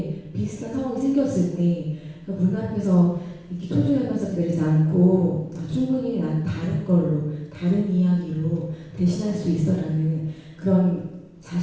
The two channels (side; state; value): both; identical; correlation 1.00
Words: 비슷한 상황이 생겼을 때 문 앞에서 이렇게 초조해하면서 기다리지 않고 충분히 난 다른 걸로 다른 이야기로 대신할 수 있어라는 그런